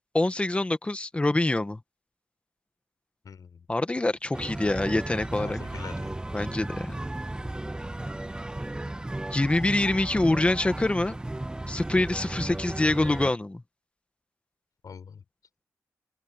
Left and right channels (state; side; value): normal; both; correlation 0.92